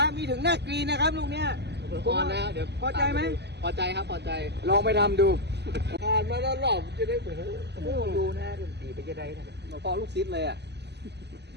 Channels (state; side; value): late; left; 0.49 ms